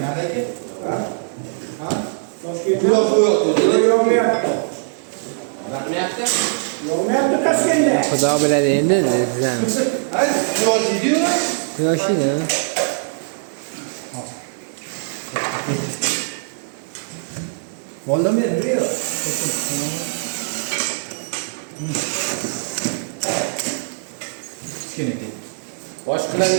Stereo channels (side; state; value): left; silent; digital silence